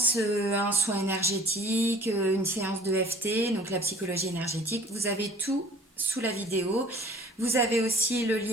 un soin énergétique, une séance de FT, donc la psychologie énergétique. Vous avez tout sous la vidéo. Vous avez aussi le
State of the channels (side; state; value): both; normal; correlation 0.50